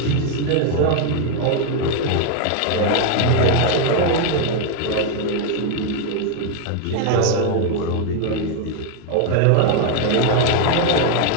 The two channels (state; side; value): different; both; correlation 0.01